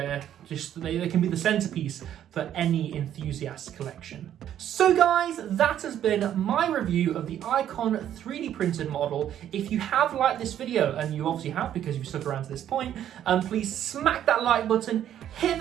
can be the centerpiece for any enthusiast collection. So guys, that has been my review of the Icon 3D printed model. If you have liked this video, and you obviously have because you've stuck around to this point, please smack that like button, hit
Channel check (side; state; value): left; quieter; 10.7 dB